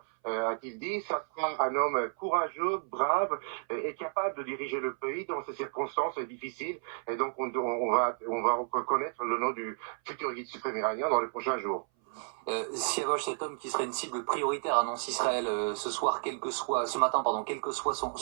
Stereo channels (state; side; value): silent; left; 56 dB below the other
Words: A-t-il dit, ça sera un homme courageux, brave et capable de diriger le pays dans ces circonstances difficiles. Et donc on va reconnaître le nom du futur guide suprême iranien dans les prochains jours. Siavosh, cet homme qui serait une cible prioritaire, annonce Israël ce matin, quelle que soit